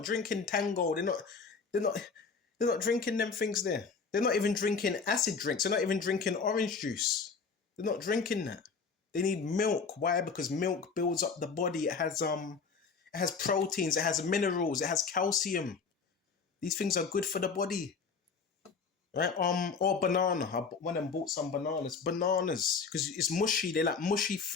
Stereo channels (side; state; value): right; quieter; 5.2 dB